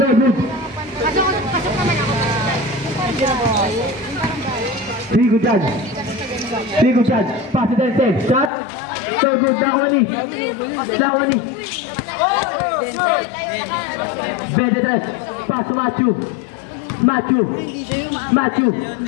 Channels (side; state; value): right; drops out; at 8.5 s